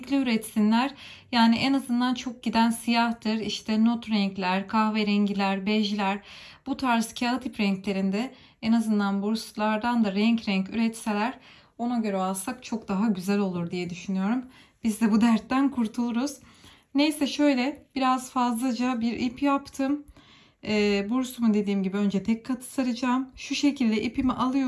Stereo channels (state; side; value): identical; both; correlation 1.00